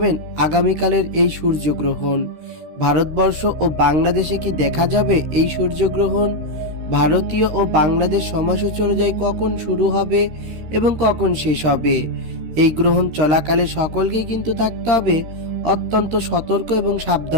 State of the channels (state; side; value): late; left; 13 ms